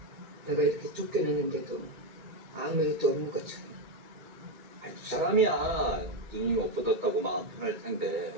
내가 이렇게 쫓겨냈는데도 아무 일도 없는 것처럼. 아니 두 사람이야 눈이 없어졌다고 마음 편할 텐데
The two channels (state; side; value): late; left; 2.2 ms